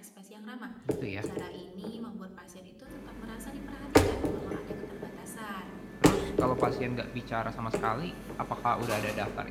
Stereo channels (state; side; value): identical; both; correlation 1.00